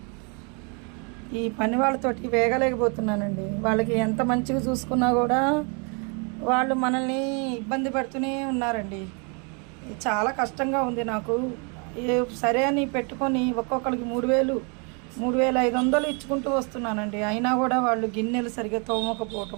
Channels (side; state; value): left; quieter; 35.3 dB